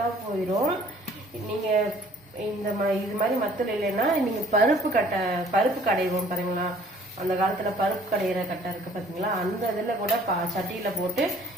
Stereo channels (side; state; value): both; normal; correlation 0.56